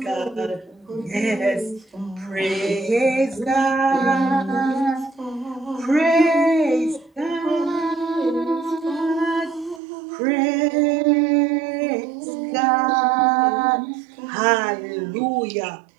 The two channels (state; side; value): drops out; left; at 9.8 s